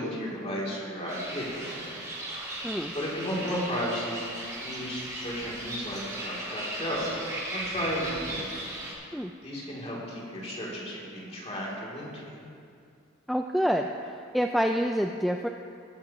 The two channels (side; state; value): both; normal; correlation 0.55